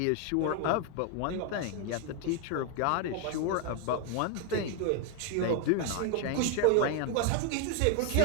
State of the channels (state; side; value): different; both; correlation 0.01